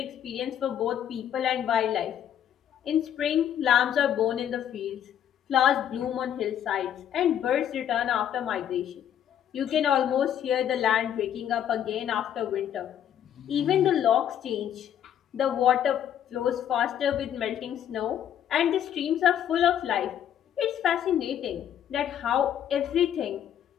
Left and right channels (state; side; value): quieter; right; 10.0 dB